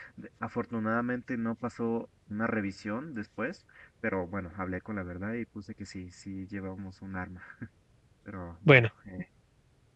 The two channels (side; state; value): both; identical; correlation 1.00